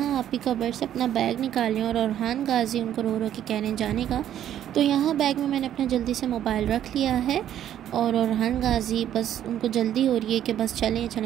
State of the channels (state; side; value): quieter; left; 10.9 dB